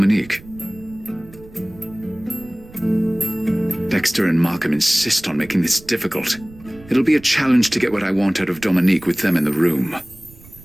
Dexter and Markham insist on making this difficult. It'll be a challenge to get what I want out of Dominique with them in the room.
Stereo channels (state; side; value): noise; right; rumble, 21 dB below the sound